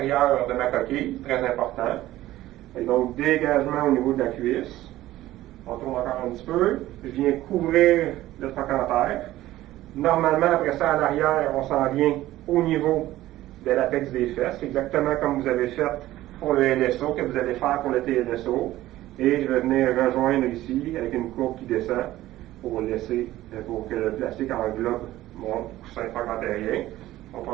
de ma coquille, très important. Et donc, dégagement au niveau de la cuisse. On tourne encore un petit peu. Je viens couvrir le trochanter. Normalement, après ça, à l'arrière, on s'en vient au niveau de l'apex des fesses, exactement comme vous avez fait pour le LSO, que vous allez faire pour le TLSO. Et je vais venir rejoindre ici avec une courbe qui descend pour que le plastique englobe mon coussin trochanterien. On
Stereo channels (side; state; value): left; quieter; 15.4 dB